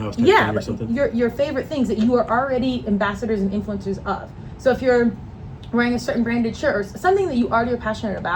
type yeah, thing or something? your favorite things that you are already ambassadors and influencers of. So if you're wearing a certain branded shirt or something that you already are passionate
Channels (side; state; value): both; identical; correlation 1.00